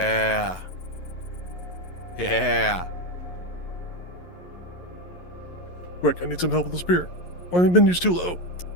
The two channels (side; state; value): right; late; 11 ms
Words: Yeah. Quick, I need some help with the spear. Why have you been used too low?